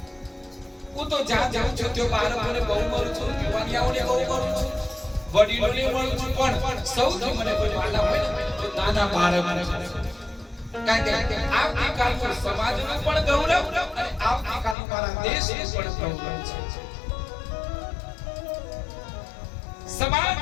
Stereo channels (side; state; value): right; drops out; at 14.8 s